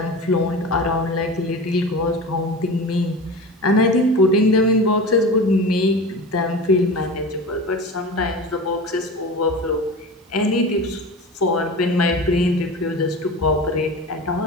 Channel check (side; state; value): both; normal; correlation 0.31